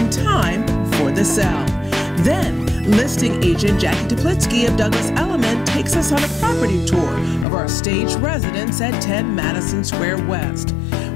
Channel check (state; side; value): drops out; right; at 7.5 s